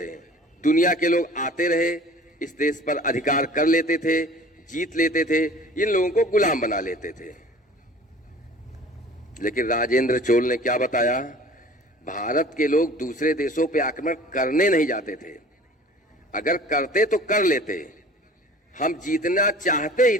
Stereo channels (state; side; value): normal; both; correlation 0.46